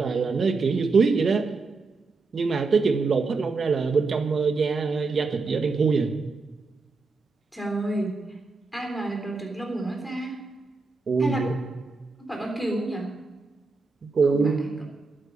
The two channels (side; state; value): left; quieter; 4.1 dB